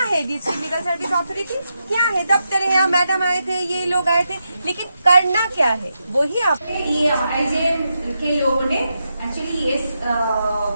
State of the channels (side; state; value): both; inverted; correlation -0.86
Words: है डिस्ट्रिक्ट लीगल सर्विस अथॉरिटी? क्या है? दफ्तर है, यहाँ मैडम आए थे, ये लोग आए थे, लेकिन करना क्या है वही आप। ये आईजेएम के लोगों ने एक्चुअली इस